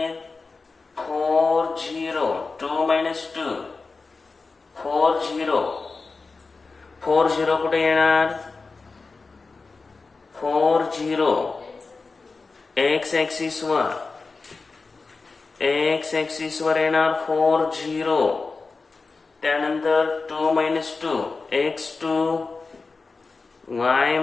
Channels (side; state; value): right; quieter; 4.1 dB